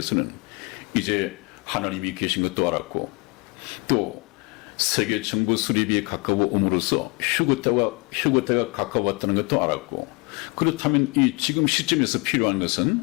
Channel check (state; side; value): quieter; right; 28.6 dB